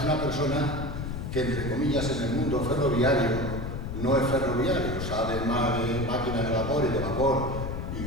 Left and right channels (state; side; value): noise; left; rumble, 5 dB below the sound